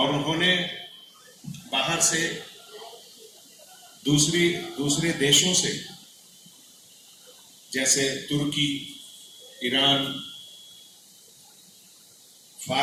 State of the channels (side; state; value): both; identical; correlation 1.00